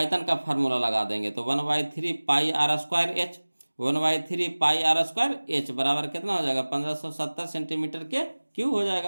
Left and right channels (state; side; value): inverted; both; correlation -1.00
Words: का फार्मूला लगा देंगे तो 1/3 pi r square h, 1/3 pi r square h बराबर कितना हो जाएगा, 1570 सेंटीमीटर के क्यू हो